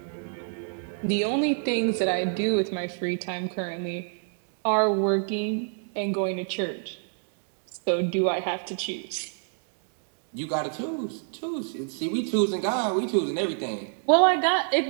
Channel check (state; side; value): silent; left; 60 dB below the other